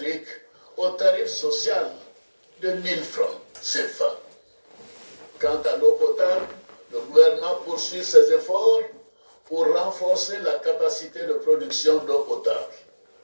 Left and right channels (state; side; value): inverted; both; correlation -1.00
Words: au tarif social de 1 000 francs CFA. Quant à l'eau potable, le gouvernement poursuit ses efforts pour renforcer la capacité de production d'eau potable.